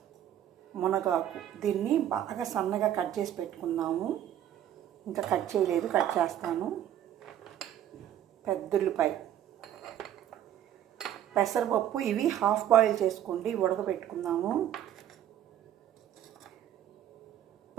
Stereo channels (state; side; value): quieter; left; 11.0 dB